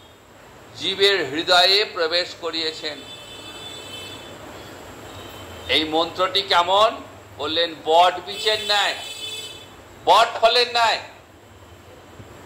জীবের হৃদয়ে প্রবেশ করিয়েছেন। এই মন্ত্রটি কেমন বললেন? বট বীজের ন্যায়, বট ফলের ন্যায়।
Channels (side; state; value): both; identical; correlation 1.00